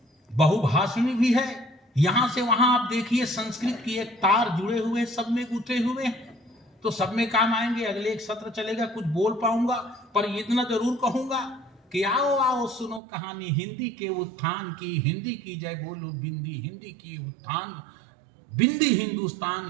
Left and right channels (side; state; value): left; drops out; at 13.0 s